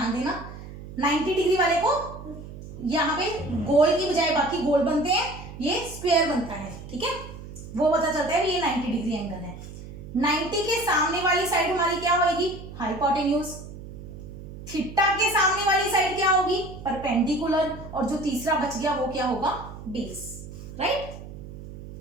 देना 90 डिग्री वाले को यहां पे गोल की बजाय बाकी गोल बनते हैं, ये स्क्वायर बनता है। ठीक है, वो पता चलता है ये 90 डिग्री एंगल है। 90 के सामने वाली साइड हमारी क्या होगी, हाइपोटेन्यूज। थीटा के सामने वाली साइड क्या होगी, परपेंडिकुलर। और जो तीसरा बच गया वो क्या होगा, बेस। राइट?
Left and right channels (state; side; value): noise; right; hum, 13 dB below the sound